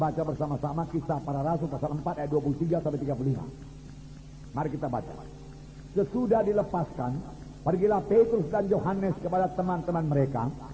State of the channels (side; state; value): both; identical; correlation 1.00